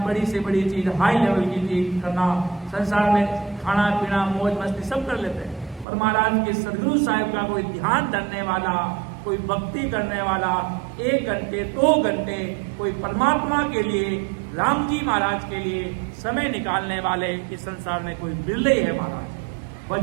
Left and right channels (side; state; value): left; drops out; at 5.9 s